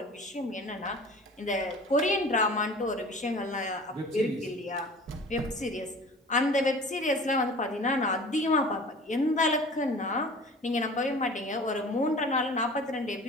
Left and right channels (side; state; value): both; normal; correlation 0.42